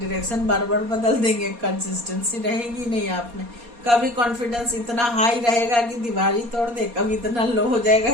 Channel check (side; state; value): left; late; 4.2 ms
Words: बार बार बदल देंगे, कंसिस्टेंसी रहेगी नहीं आप में। कभी कॉन्फिडेंस इतना हाई रहेगा कि दीवार ही तोड़ दे, कभी इतना लो हो